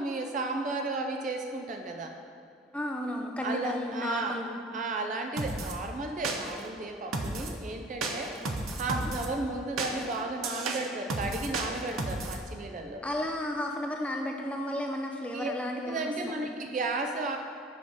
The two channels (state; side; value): normal; both; correlation 0.46